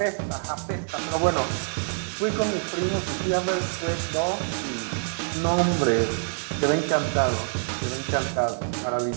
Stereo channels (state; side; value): silent; left; 61 dB below the other